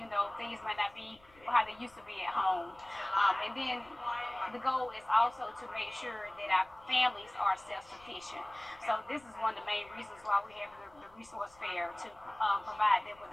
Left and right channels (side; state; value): left; noise; rumble, 27 dB below the sound